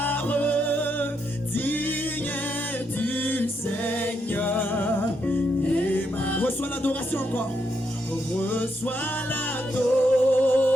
Digne es-tu, Seigneur, Emmanuel. Reçois l'adoration encore. Reçois l'adoration.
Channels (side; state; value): both; normal; correlation 0.79